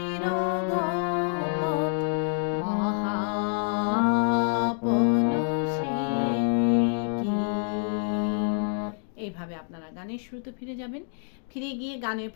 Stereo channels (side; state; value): right; silent; 60 dB below the other